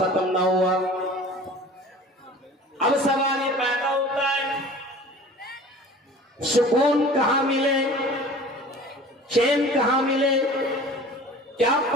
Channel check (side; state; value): both; normal; correlation 0.43